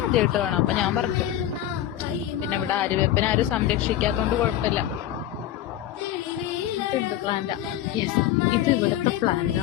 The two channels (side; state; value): right; quieter; 12.4 dB